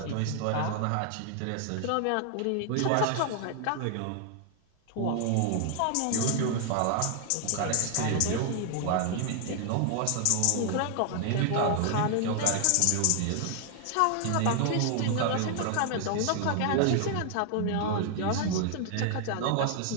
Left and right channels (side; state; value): both; different; correlation 0.00